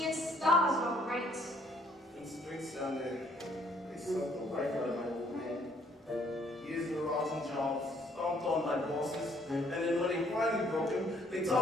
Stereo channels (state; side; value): normal; both; correlation 0.65